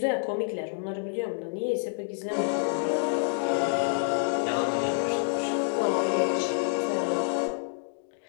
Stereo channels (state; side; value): silent; right; digital silence